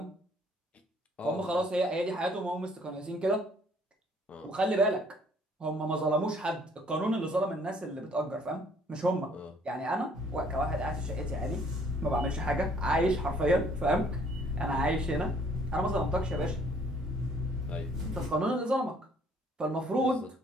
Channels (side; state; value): both; normal; correlation 0.61